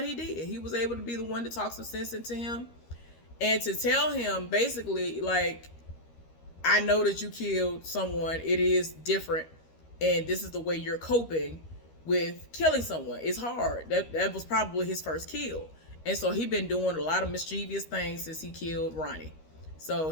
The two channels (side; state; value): right; late; 13 ms